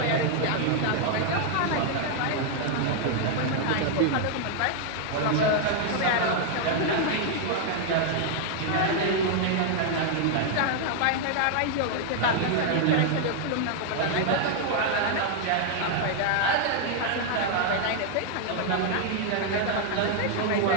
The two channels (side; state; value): both; different; correlation 0.00